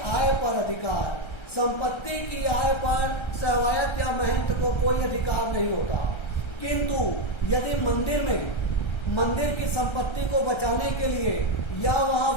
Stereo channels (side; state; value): right; late; 1.3 ms